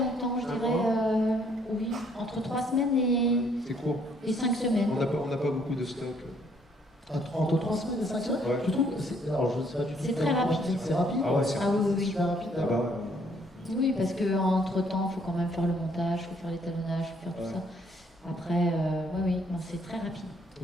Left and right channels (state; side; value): normal; both; correlation 0.66